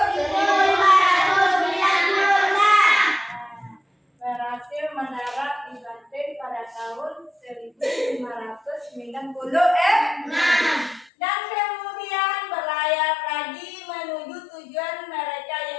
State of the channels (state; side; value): drops out; right; at 11.1 s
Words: 1500. tahun 1596 dan kemudian berlayar lagi menuju tujuan mereka